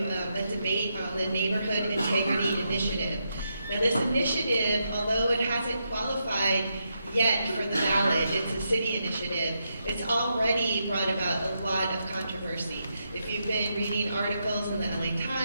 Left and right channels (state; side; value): inverted; both; correlation -0.83